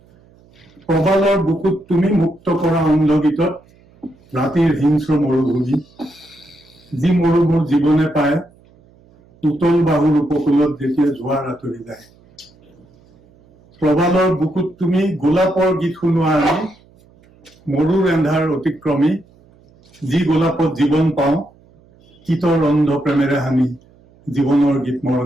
Probalor bukut tumi mukto kora onlogitot ratir hinsro morubhumi ji morubur jibone paye utol bahur upokulot jethiya jhoar atori jay. Probalor bukut tumi golapor git শুনোৱা আমি মৰুৰ এন্ধাৰ অতিক্ৰমী যি গোলাপত জীৱন পাওঁ কিতৰ অন্ধ প্ৰেমেৰে হানি জীৱনৰ গীত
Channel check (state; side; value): noise; right; hum, 29 dB below the sound